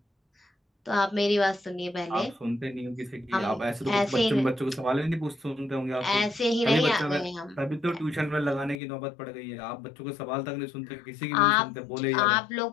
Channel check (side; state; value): right; drops out; at 8.8 s